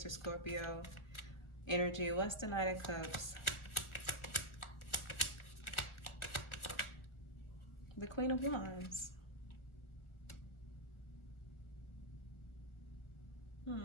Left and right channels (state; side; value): late; right; 1.4 ms